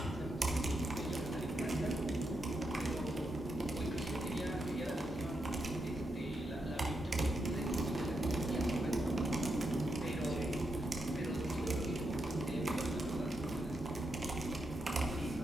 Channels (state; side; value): normal; both; correlation 0.84